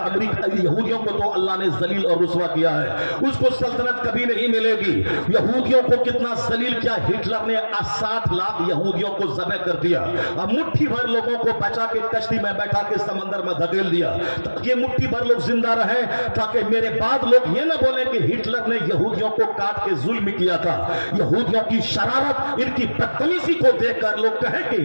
امریکہ یہودیوں کو تو اللہ نے ذلیل اور رسوا کیا ہے، اس کو سلطنت کبھی نہیں ملے گی۔ یہودیوں کو کتنا ذلیل کیا، ہٹلر نے 60 لاکھ یہودیوں کو ذبح کر دیا، اب مٹھی بھر لوگوں کو بچا کے کشتی میں بیٹھا کے سمندر میں دھکیل دیا تاکہ مٹھی بھر لوگ زندہ رہیں، تاکہ میرے بعد لوگ یہ نہ بولیں کہ ہٹلر نے یہودیوں کو کاٹ کے ظلم کیا تھا۔ یہودیوں کی شرارت، ان کی بدتمیزی کو دیکھ کر لوگ کہیں کہ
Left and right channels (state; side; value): inverted; both; correlation -1.00